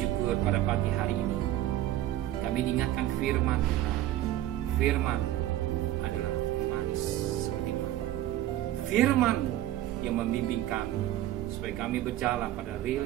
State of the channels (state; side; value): quieter; left; 13.7 dB